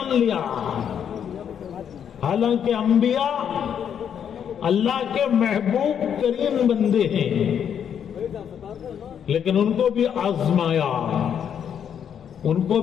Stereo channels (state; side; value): quieter; right; 8.4 dB